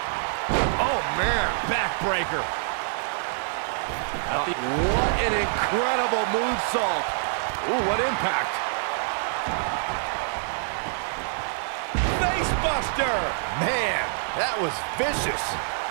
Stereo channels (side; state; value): left; silent; 57 dB below the other